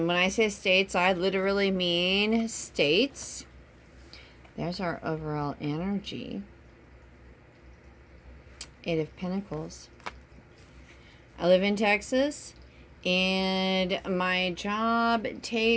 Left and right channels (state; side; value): identical; both; correlation 1.00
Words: when I say states, I literally mean states. There's our overall energy. Eight of Pentacles. I live in Texas, and my job